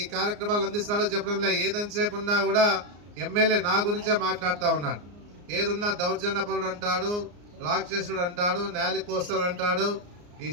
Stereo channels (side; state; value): left; late; 34 ms